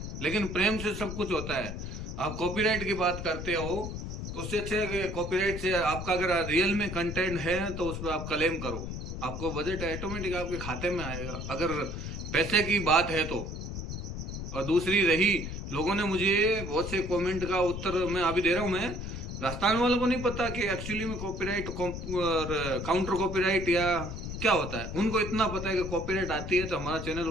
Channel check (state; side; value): noise; left; rumble, 6 dB below the sound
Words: लेकिन प्रेम से सब कुछ होता है। आप कॉपीराइट की बात करते हो, उससे अच्छे कि कॉपीराइट से आपका अगर रियल में कंटेंट है तो उस पर आप क्लेम करो, आपको बजट ऑटोमेटिक आपके खाते में आएगा, अगर पैसे की बात है तो। और दूसरी रही, लोगों ने मुझे बहुत से कमेंट का उत्तर मैं अभी दे रहा हूँ। मैं राजस्थान वालों को नहीं पता कि एक्चुअली में कॉपीराइट काउंटर कॉपीराइट या क्या होता है। उनको इतना पता है कि कॉपीराइट आती है तो हमारा चैनल